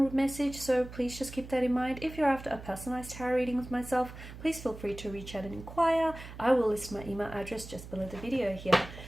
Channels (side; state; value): right; noise; hum, 14 dB below the sound